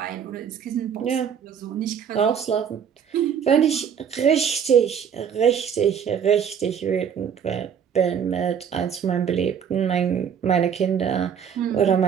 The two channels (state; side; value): quieter; left; 7.8 dB